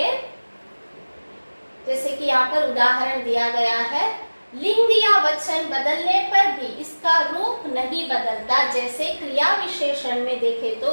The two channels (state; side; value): inverted; both; correlation -1.00